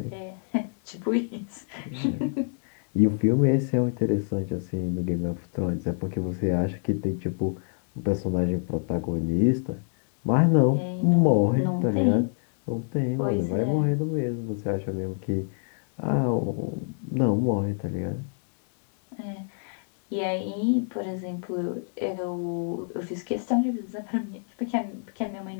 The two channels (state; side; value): silent; right; digital silence